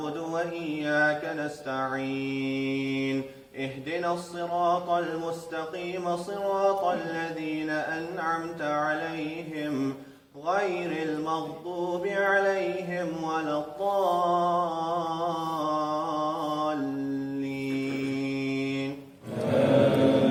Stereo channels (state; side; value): identical; both; correlation 1.00